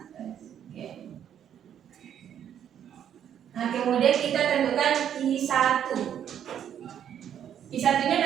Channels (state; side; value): quieter; left; 9.5 dB